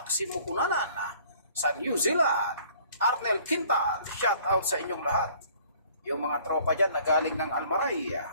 Cunanan sa New Zealand, Arnel Quintal, shout out sa inyong lahat. Yung mga tropa dyan na galing ng Almaray,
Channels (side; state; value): both; inverted; correlation -0.55